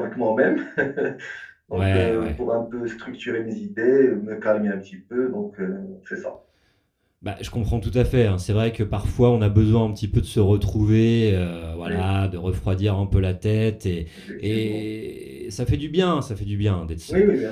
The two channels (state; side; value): identical; both; correlation 1.00